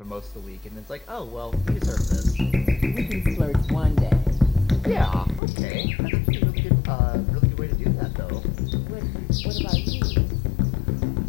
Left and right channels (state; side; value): drops out; right; at 5.4 s